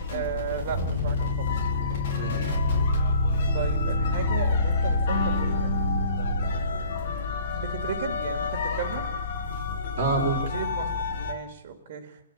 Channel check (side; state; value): both; inverted; correlation -0.50